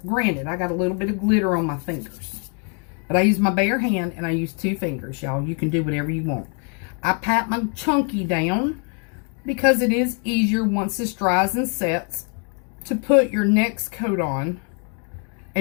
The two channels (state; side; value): quieter; right; 39.5 dB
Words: granted, I got a little bit of glitter on my fingers, but I use my bare hand and I use 2 fingers, y'all. You can do whatever you want. I pat my chunky down because it is easier once this dries and sets to put your next coat on